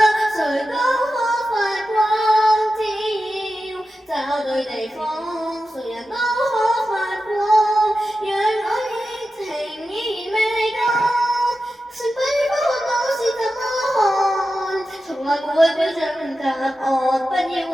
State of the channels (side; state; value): both; normal; correlation 0.91